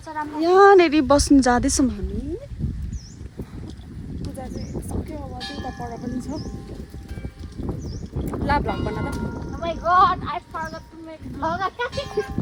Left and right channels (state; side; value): identical; both; correlation 1.00